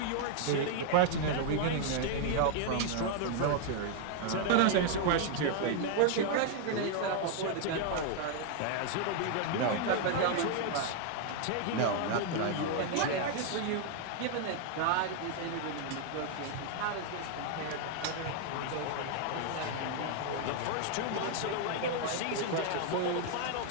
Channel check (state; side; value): different; both; correlation 0.00